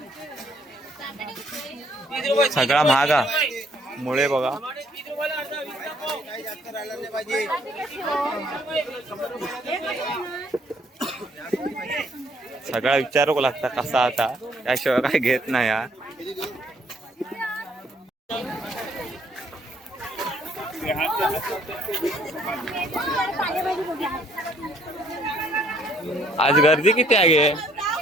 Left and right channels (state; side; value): normal; both; correlation 0.65